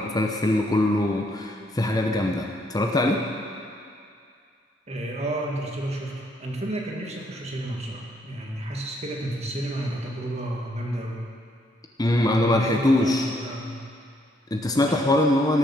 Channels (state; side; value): normal; both; correlation 0.71